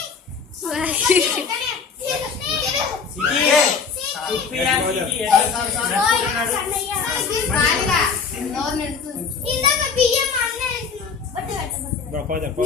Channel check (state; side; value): quieter; right; 5.6 dB